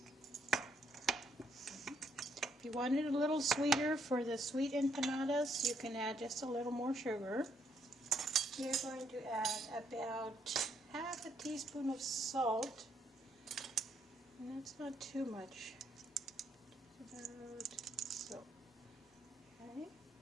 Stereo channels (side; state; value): both; normal; correlation 0.73